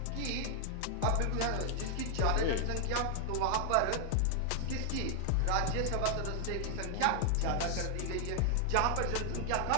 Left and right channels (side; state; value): both; different; correlation 0.00